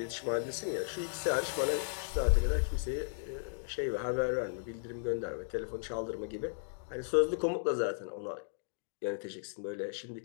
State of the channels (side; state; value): right; silent; digital silence